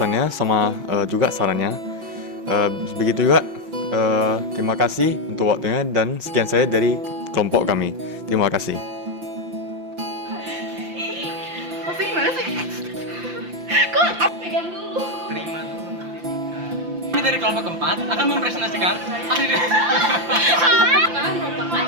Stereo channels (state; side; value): late; left; 5.8 ms